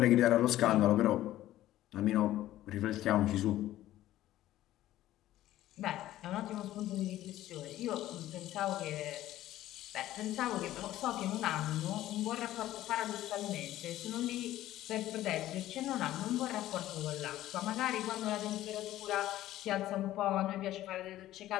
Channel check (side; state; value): right; quieter; 14.3 dB